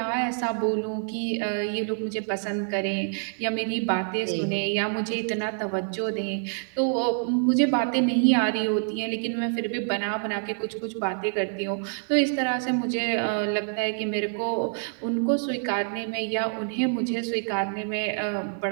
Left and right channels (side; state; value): left; silent; 60 dB below the other